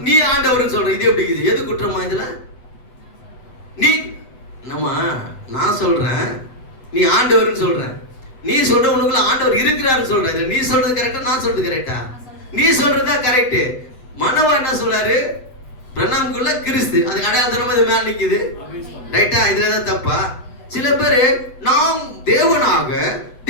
நீ ஆண்டவர்னு சொல்ற. இது எப்படி? இது எது குற்றமா இதுல? நீ நான் சொல்றேன் நீ ஆண்டவர்னு சொல்ற, நீ சொல்ற உனக்குள்ள ஆண்டவர் இருக்கிறாருன்னு சொல்ற. இதுல நீ சொல்றது கரெக்டா, நான் சொல்றது கரெக்டா? நீ சொல்றதா கரெக்ட். மனோவா என்ன சொல்றாரு? பிரணாமுக்குள்ள கிறிஸ்து, அதுக்கு அடையாளத்தனமா இது மேல நிக்குது. ரைட்டா? இதுலதான் தப்பா? சில பேரு நாம் தேவனாக,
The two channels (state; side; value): late; right; 8.0 ms